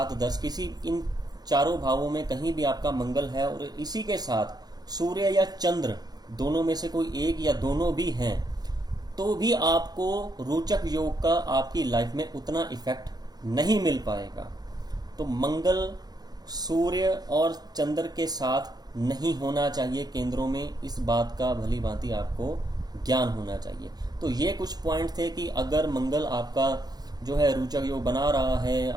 10 किसी इन चारों भावों में कहीं भी आपका मंगल है और इसी के साथ सूर्य या चंद्र दोनों में से कोई एक या दोनों भी हैं, तो भी आपको रोचक योग का आपकी लाइफ में उतना इफेक्ट नहीं मिल पाएगा। तो मंगल सूर्य और चंद्र के साथ नहीं होना चाहिए केंद्रों में, इस बात का भली भांति आपको ज्ञान होना चाहिए। तो ये कुछ पॉइंट थे कि अगर मंगल आपका जो है रोचक योग बना रहा है,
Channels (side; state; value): left; late; 0.19 ms